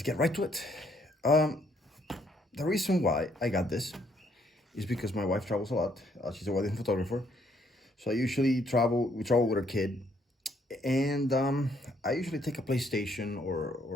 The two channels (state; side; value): normal; both; correlation 0.69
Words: get right to it. The reason why I got this is because my wife travels a lot. She's a wedding photographer, so we travel with her kid, and I usually take a PlayStation